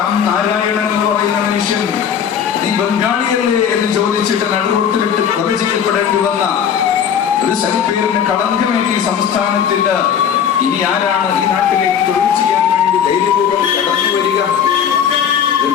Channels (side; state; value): right; quieter; 8.2 dB